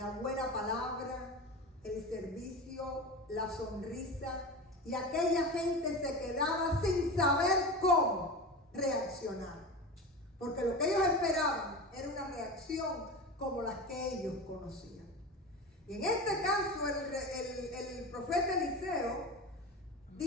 buena palabra, el servicio, la sonrisa, y aquella gente se quedaba sin saber cómo reaccionar, porque lo que ellos esperaban era una reacción como las que ellos conocían. Y en este caso el profeta Eliseo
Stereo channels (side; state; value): both; normal; correlation 0.27